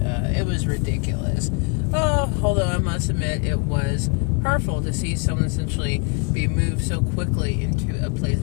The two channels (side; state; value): right; quieter; 33.2 dB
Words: was ridiculous. Oh, although I must admit it was hurtful to see someone essentially be moved so quickly into a place